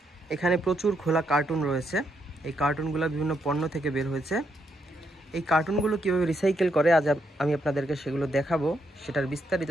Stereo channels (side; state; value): both; normal; correlation 0.78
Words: এখানে প্রচুর খোলা কার্টুন রয়েছে। এই কার্টুনগুলো বিভিন্ন পণ্য থেকে বের হয়েছে। এই কার্টুনগুলো কীভাবে রিসাইকেল করে আজ আমি আপনাদেরকে সেগুলো দেখাবো, সেটার বিস্তারিত